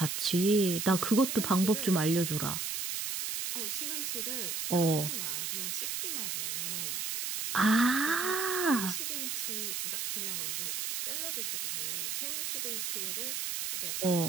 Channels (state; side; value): noise; right; hiss, 2 dB below the sound